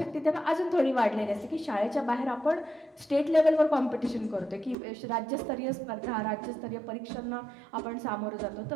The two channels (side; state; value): left; drops out; at 4.8 s